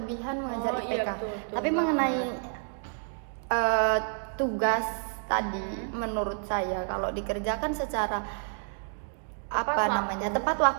mengejar IPK. Betul. Tapi mengenai tugas tadi, menurut saya kalau dikerjakan secara tepat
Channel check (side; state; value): left; silent; 58 dB below the other